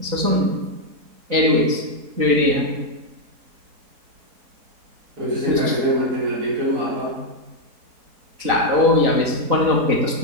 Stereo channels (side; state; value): left; late; 4.0 ms